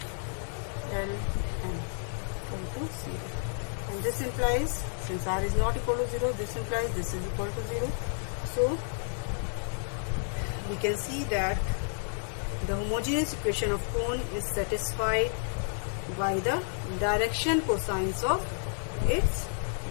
L N equal to 0. And this implies, since R is not equal to 0, this implies this is equal to 0. So we can see that the homogeneous equation of cone is satisfied by the direction cosines of its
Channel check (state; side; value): silent; right; 56 dB below the other